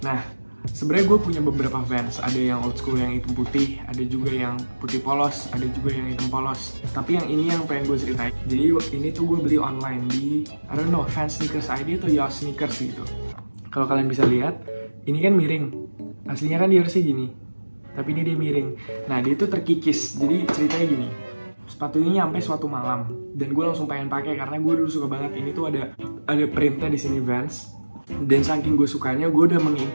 Nah, sebenarnya gue punya beberapa Vans. Ada yang old school yang hitam putih, ada juga yang putih polos, ada juga yang hitam polos. Tapi yang ini yang pengen gue ceritain. Jadi ini tuh gue beli online di, I don't know, Vans Sneakers ID atau Yoss Sneakers gitu. Kalau kalian bisa lihat, ini kan miring. Aslinya kan dia harusnya gini, tapi ini dia miring. Nah, dia tuh terkikis. Jadi ceritanya gini. Sepatu ini nyampe suatu malam dan gue langsung pengen pakai karena gue dulu suka banget. Ini tuh ada printnya di sini Vans, dan saking gue sukanya gue udah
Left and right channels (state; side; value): inverted; both; correlation -1.00